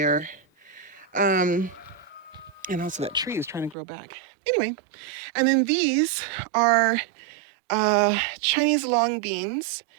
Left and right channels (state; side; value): drops out; left; at 3.8 s